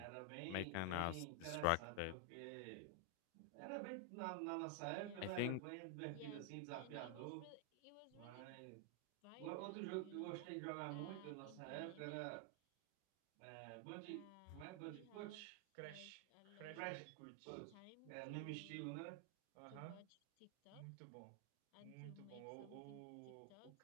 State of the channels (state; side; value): different; both; correlation 0.00